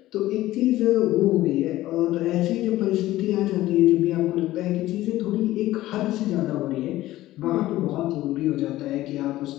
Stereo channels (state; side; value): quieter; right; 15.9 dB